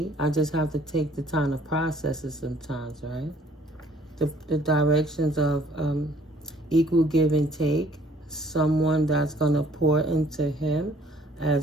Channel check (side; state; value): both; normal; correlation 0.59